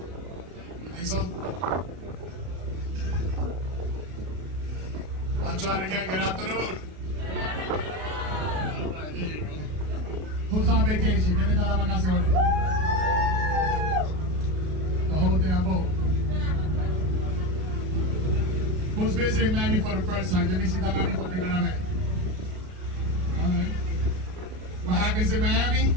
You think so? I'll try it again. Good afternoon. All right, there you go. Who's on vacation? ¿Quién está de vacaciones? The whole damn boat. Who's visiting Miami for the first time? ¿Quién visita Miami por primera vez? All right. What happens in Miami?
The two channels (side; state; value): left; late; 33 ms